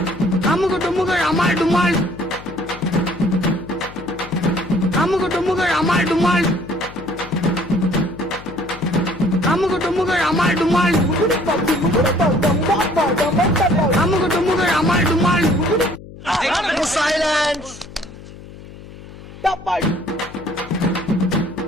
அமுக டுமுக அமால் டுமால் அமுக டுமுக அமால் டுமால் அமுக டுமுக அமால் டுமால் அமுக டுமுக அமால் டுமால் சைலன்ஸ்.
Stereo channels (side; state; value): left; noise; hum, 17 dB below the sound